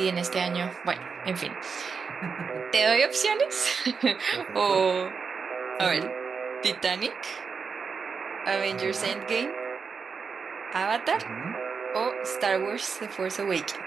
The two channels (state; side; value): quieter; left; 5.5 dB